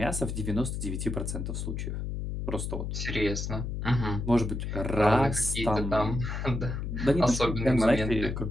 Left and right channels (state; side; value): noise; left; hum, 4 dB below the sound